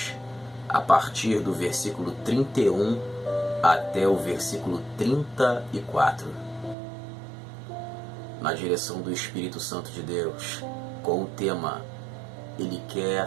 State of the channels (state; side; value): drops out; left; at 6.8 s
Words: a partir do versículo 31 até o versículo 34. Na direção do Espírito Santo de Deus, com o tema Ele quer